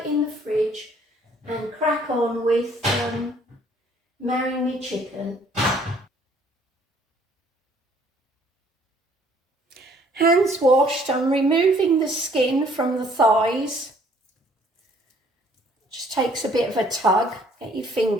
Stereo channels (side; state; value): both; normal; correlation 0.60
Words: in the fridge and crack on with marrying me chicken. Hands washed, I'm removing the skin from the thighs. Just takes a bit of a tug, get your